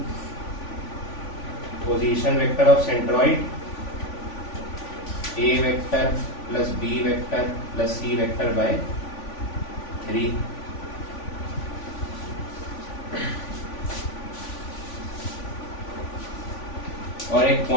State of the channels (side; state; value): right; late; 3.5 ms